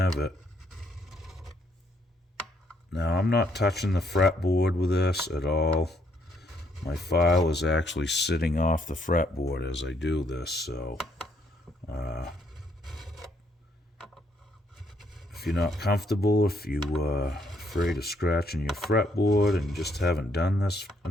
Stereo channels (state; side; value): normal; both; correlation 0.70